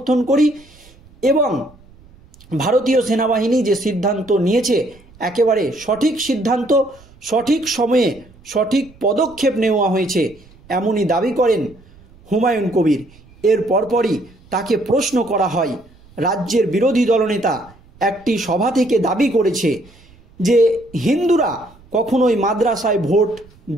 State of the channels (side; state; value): right; noise; rumble, 26 dB below the sound